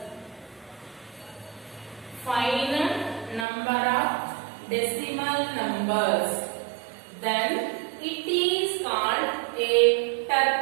then it is called a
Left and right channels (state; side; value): drops out; left; at 3.5 s